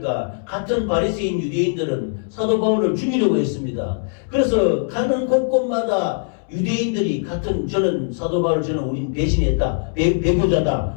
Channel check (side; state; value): right; silent; 65 dB below the other